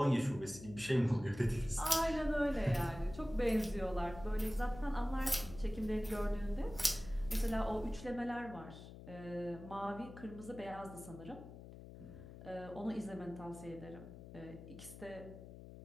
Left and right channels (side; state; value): left; noise; hum, 14 dB below the sound